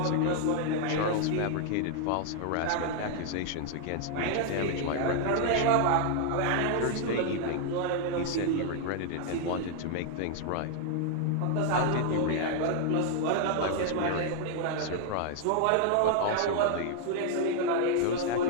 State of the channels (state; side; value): different; both; correlation 0.00